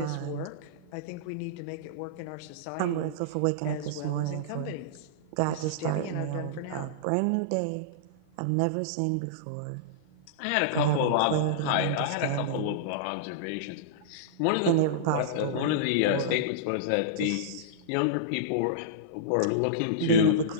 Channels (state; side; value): different; both; correlation -0.03